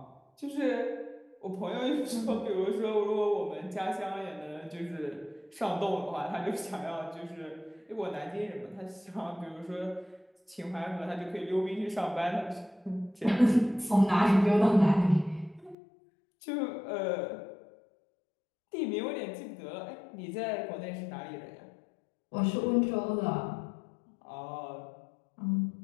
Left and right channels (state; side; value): drops out; right; at 15.8 s